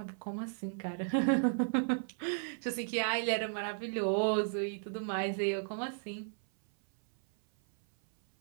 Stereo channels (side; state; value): left; silent; 55 dB below the other